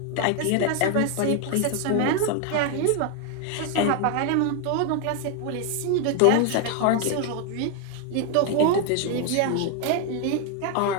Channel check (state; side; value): different; both; correlation 0.01